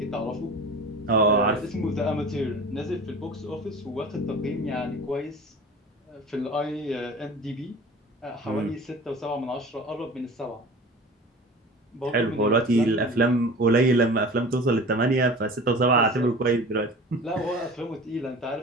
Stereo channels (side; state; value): both; normal; correlation 0.39